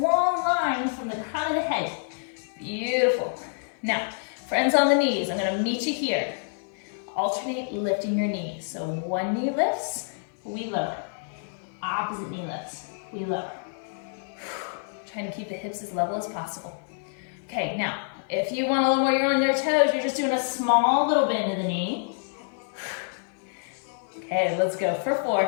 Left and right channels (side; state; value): right; silent; digital silence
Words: line from the crown of the head. Beautiful. Now, friends on the knees, I'm gonna meet you here. Alternate lifting your knees. So one knee lifts, we lower. Opposite knee lifts, we lower. Trying to keep the hips as level as possible. Okay, now, if you want a little more, you're on your toes, you're just doing a small little bend of the knee. Okay, let's go for 4,